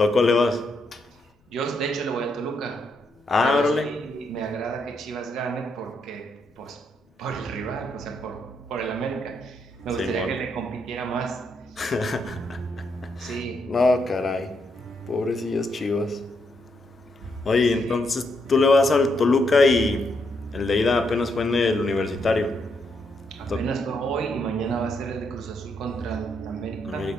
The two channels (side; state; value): both; normal; correlation 0.78